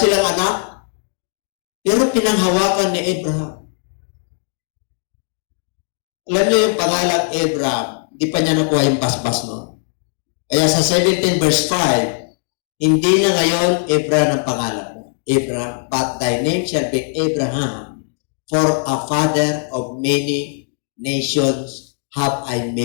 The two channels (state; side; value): silent; right; 59 dB below the other